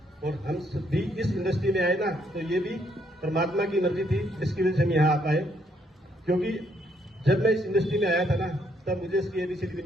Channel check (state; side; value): normal; both; correlation 0.71